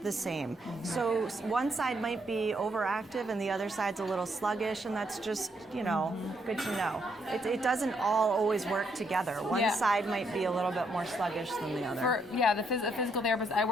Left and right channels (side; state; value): both; normal; correlation 0.74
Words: the same. So one side might be overactive and the other side's a little sluggish, and that's just, you know, good to know. It doesn't all always work together. One side might be a little bit more sluggish than the other. The physical therapist I